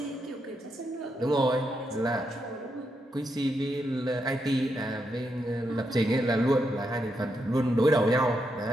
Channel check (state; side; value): normal; both; correlation 0.82